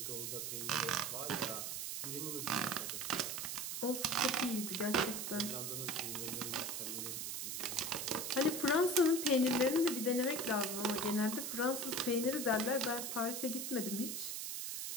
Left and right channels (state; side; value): noise; right; hiss, 3 dB below the sound